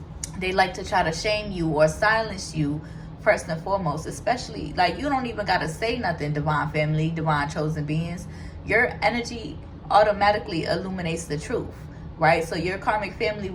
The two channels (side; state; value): both; identical; correlation 1.00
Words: they like to try to shame you or silence you first and foremost. Especially, like, you don't even got to say nothing, divine family, divine chosen beings. Your energy automatically illuminates the truth, right? So your karmic family